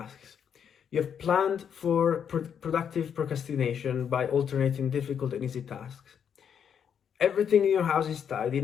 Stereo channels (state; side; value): quieter; right; 7.9 dB